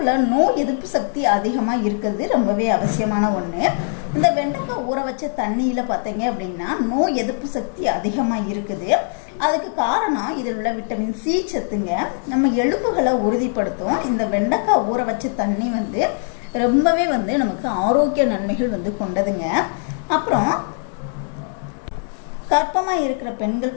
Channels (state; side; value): silent; right; 59 dB below the other